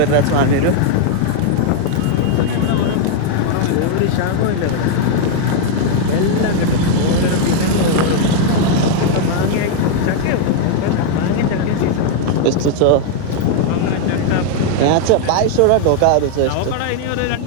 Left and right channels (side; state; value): both; different; correlation 0.00